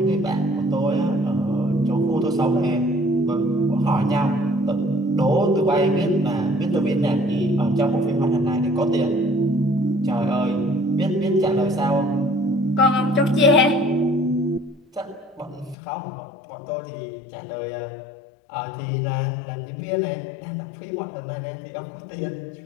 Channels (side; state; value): right; drops out; at 15.8 s